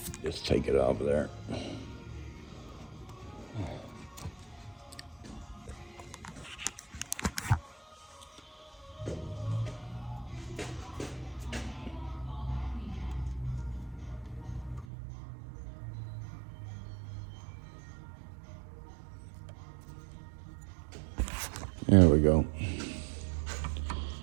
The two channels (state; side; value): drops out; left; at 14.9 s